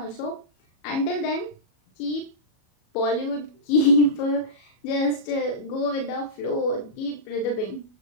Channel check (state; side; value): late; right; 37 ms